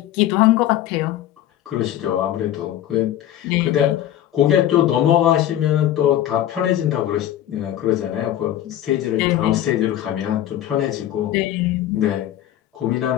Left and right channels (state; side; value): quieter; right; 12.2 dB